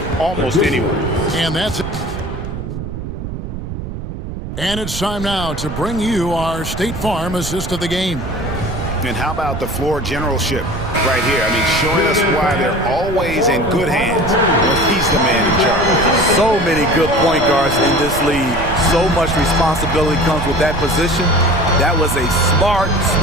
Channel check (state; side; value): noise; right; rumble, 7 dB below the sound